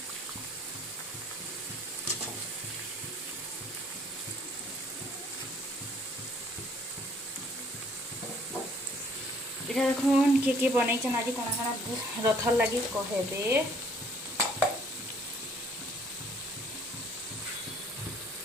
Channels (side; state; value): both; normal; correlation 0.60